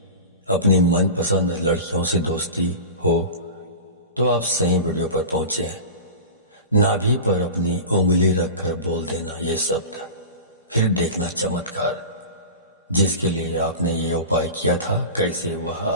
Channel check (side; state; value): both; inverted; correlation -0.31